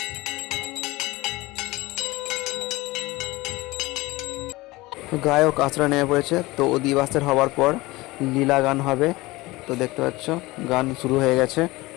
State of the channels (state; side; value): quieter; right; 20.9 dB